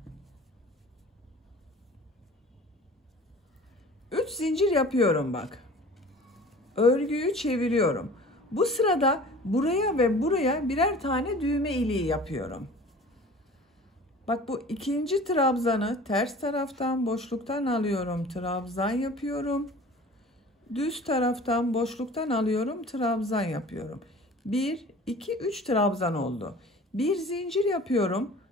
Üç zincir yapıyorum bak. Örgüyü çeviriyorum. Bu sırada buraya ve buraya birer tane düğme iliği yapıyorum. Bak bu ikinci trabzanı ters taraftan boşluktan alıyorum, trabzan yapıyorum. Düz taraftan boşluktan alıyorum, trabzan yapıyorum. 1, 2, 3 trabzan oldu. Bir zincir yapıyorum,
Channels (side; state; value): both; normal; correlation 0.43